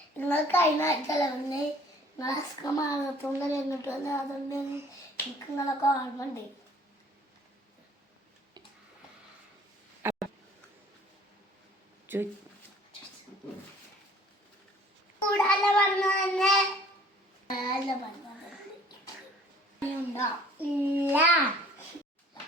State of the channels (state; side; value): normal; both; correlation 0.54